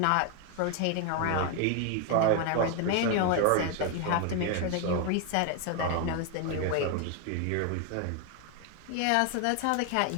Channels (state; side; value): different; both; correlation 0.01